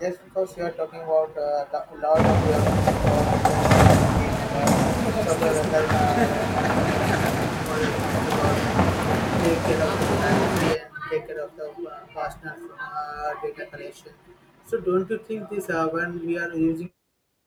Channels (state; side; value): identical; both; correlation 1.00